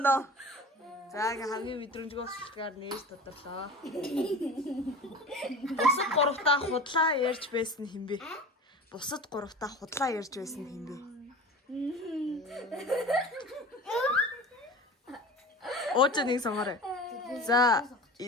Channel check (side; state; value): both; normal; correlation 0.35